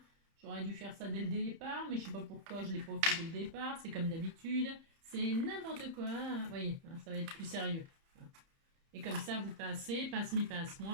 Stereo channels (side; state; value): left; late; 30 ms